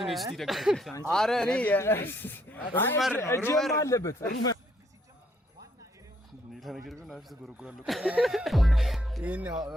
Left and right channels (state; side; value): normal; both; correlation 0.70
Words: ነው እስቲ ደጋፊ አረ እኔ ሩመር አለበት ሩመር ሌላ ነገር ግን አፍተ ጎረጎራለሁ ይሄን